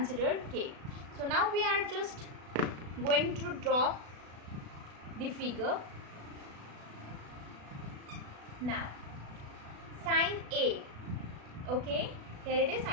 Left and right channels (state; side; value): late; left; 36 ms